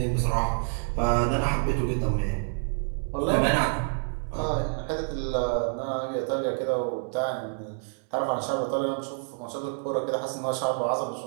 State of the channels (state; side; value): silent; left; 59 dB below the other